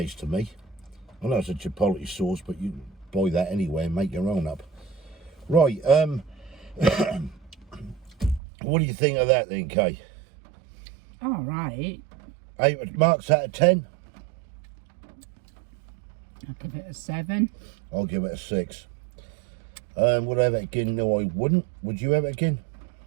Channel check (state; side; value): drops out; left; at 8.4 s